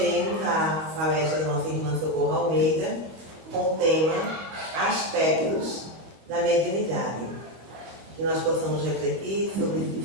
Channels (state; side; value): late; left; 25 ms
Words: a palestra da nossa irmã Socorro Almeida com o tema Aspectos da Mediunidade. Que nós possamos refletir sobre esses